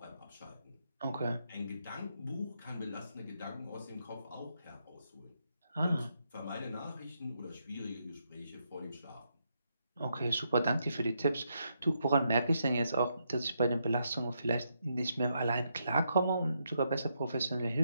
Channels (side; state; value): both; inverted; correlation -0.79